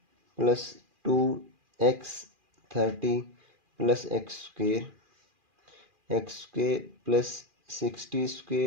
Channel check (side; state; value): left; late; 2.4 ms